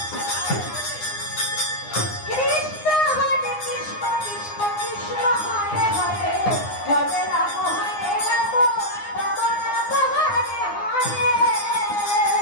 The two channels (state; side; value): late; right; 9.7 ms